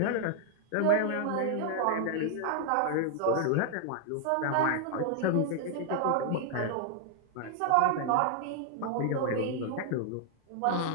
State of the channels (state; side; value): different; both; correlation 0.00